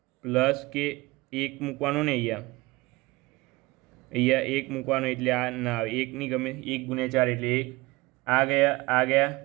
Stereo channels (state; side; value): quieter; left; 21.9 dB